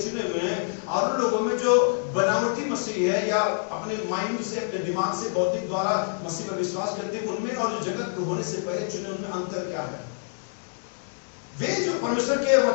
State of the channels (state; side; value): silent; right; digital silence